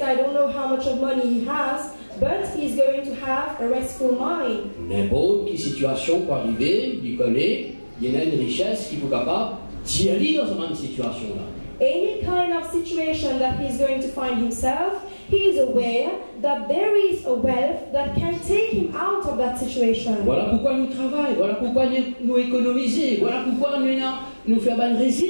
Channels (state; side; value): inverted; both; correlation -1.00